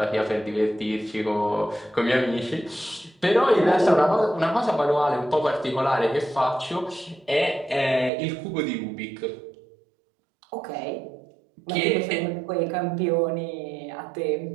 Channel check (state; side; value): drops out; left; at 8.1 s